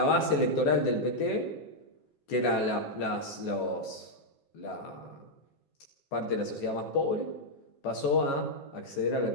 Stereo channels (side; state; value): right; late; 14 ms